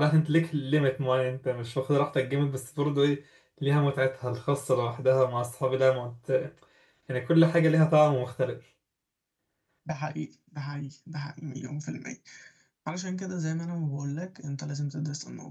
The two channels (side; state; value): both; identical; correlation 1.00